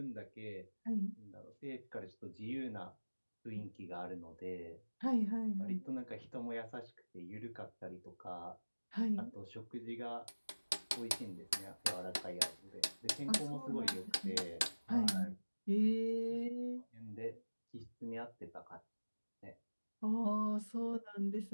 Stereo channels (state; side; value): inverted; both; correlation -1.00